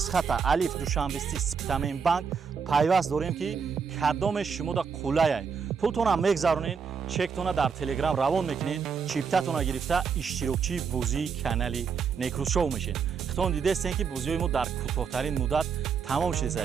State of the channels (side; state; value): left; quieter; 6.1 dB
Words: алиф душанбести Спитамен банк пайваст дорем ки кадоме шумо да қулаяй. пултона мегзаронед, чектона дар телеграм равон мекунед, чиптатона гирифта иштирокчии бозии канали Некрус шоу мешед. хитон дидестен ки бозиҳои мо дар кӯтоҳтарин муддат тамом